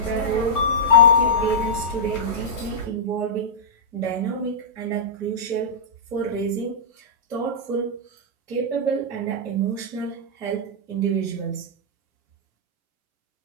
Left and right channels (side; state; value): both; normal; correlation -0.13